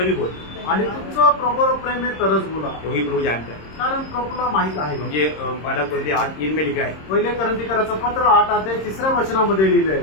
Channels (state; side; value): late; right; 26 ms